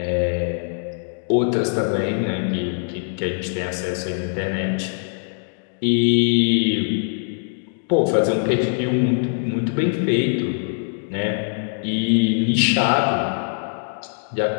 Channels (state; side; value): silent; right; digital silence